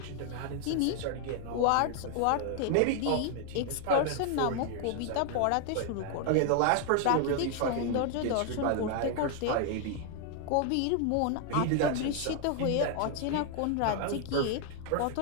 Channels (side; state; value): both; different; correlation 0.00